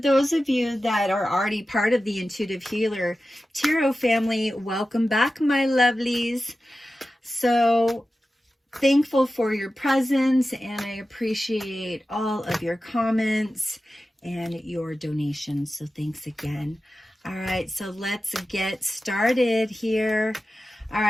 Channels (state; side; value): normal; both; correlation 0.94